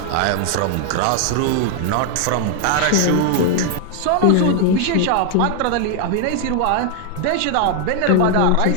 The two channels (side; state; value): both; different; correlation 0.00